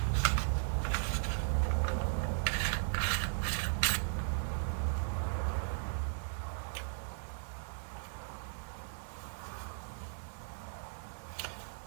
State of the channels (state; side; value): silent; left; digital silence